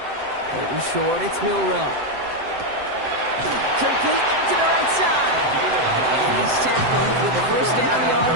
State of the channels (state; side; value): late; left; 7.7 ms